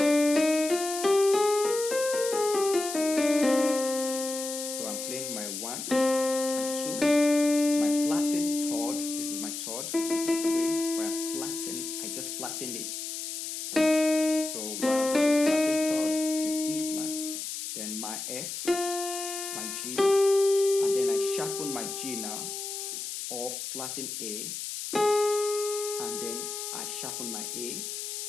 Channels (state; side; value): noise; left; hiss, 6 dB below the sound